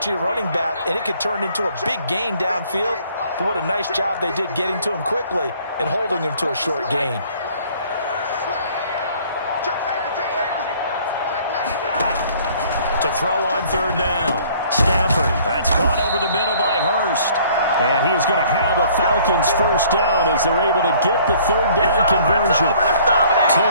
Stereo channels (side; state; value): both; inverted; correlation -0.57